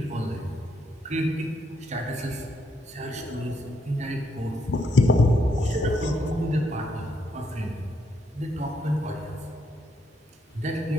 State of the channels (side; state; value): both; normal; correlation 0.76